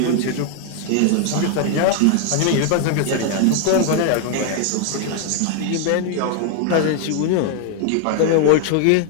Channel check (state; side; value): different; both; correlation 0.00